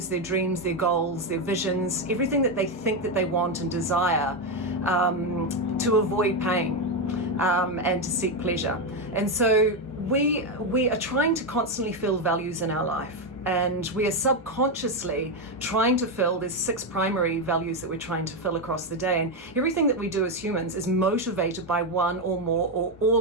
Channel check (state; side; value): normal; both; correlation 0.07